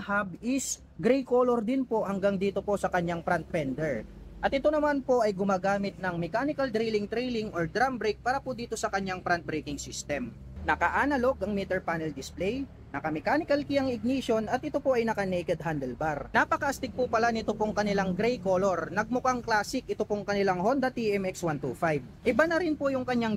hub is gray color din po hanggang dito po sa kanyang front fender. At ito naman po ay gumagamit ng mechanical drilling trailing or drum brake para po dito sa kanyang front braking system. Naka-analog ang meter panel display, naka-mechanical key ang ignition at ito po ay naka-naked handlebar. Napaka-astig po pala nito pong kanilang gray color. Nagmukhang classic ito pong kanilang Honda TMX 125. Iba na rin po yung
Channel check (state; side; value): identical; both; correlation 1.00